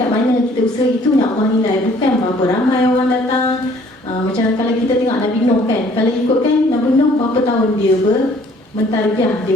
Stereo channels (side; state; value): both; normal; correlation 0.58